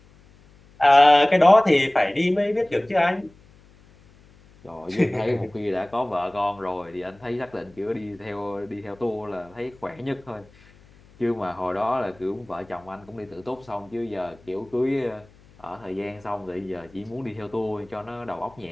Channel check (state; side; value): noise; left; hum, 27 dB below the sound